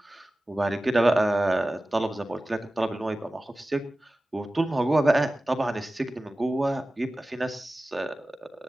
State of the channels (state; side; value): normal; both; correlation 0.96